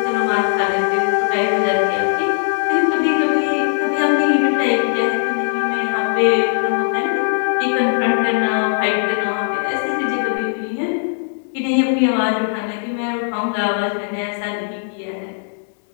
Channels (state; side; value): silent; right; digital silence